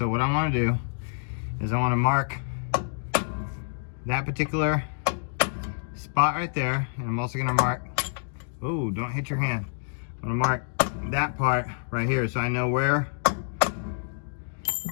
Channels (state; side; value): silent; right; digital silence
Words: what I want to do is I want to mark that particular spot right there, and I'm also gonna mark, ooh, don't hit your hand. I'm gonna mark that part right here, so I know where,